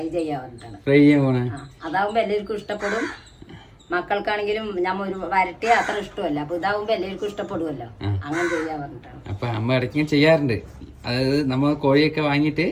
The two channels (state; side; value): identical; both; correlation 1.00